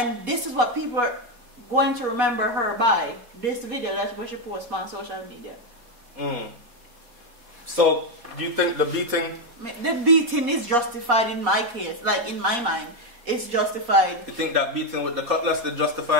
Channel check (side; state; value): left; late; 4.2 ms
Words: this is what people are going to remember her by. This video that's what she posts on social media. So, do you think the beating? The beating is justified in my case. Like, in my mind, it's justified. You think that beating with the cutlass is